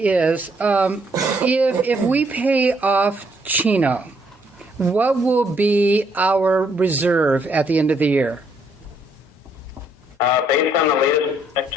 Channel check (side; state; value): both; normal; correlation 0.70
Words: if we pay off Chino, what will be our reserve at the end of the year? Based on the latest